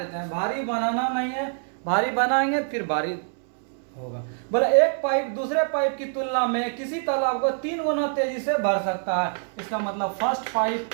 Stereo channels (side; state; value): left; silent; 62 dB below the other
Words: हैं, भारी बनाना नहीं है, भारी बनाएंगे फिर भारी होगा। बोला एक पाइप दूसरे पाइप की तुलना में किसी तालाब को 3 गुना तेजी से भर सकता है। इसका मतलब फर्स्ट पाइप